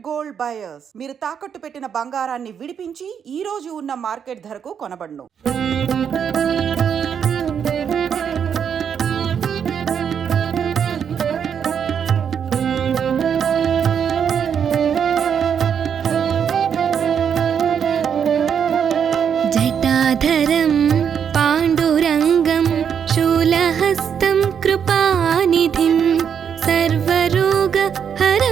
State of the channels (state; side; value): quieter; left; 7.7 dB